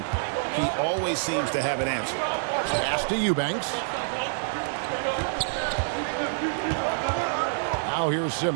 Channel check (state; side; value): silent; left; 60 dB below the other